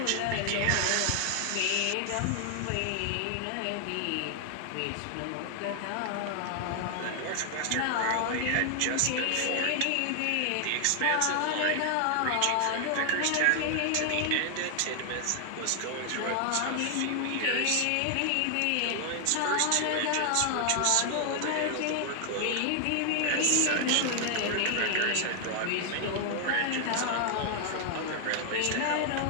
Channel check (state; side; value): different; both; correlation 0.00